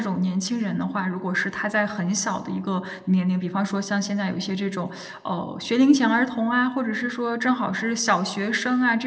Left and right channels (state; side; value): identical; both; correlation 1.00